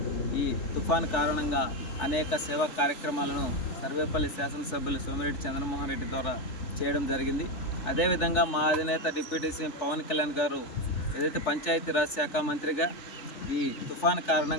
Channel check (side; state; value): right; late; 3.4 ms